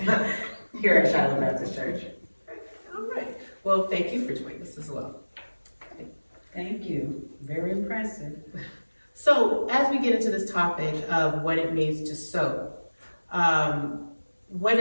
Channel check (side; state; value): both; inverted; correlation -1.00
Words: here at Shiloh Baptist Church. All right. Well, thank you for joining us as well. Okay. Thank you. Very impressive. So as we get into this topic of what it means to sow, what